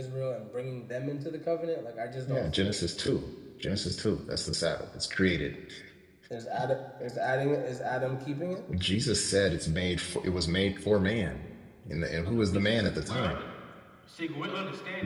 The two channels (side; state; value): both; identical; correlation 1.00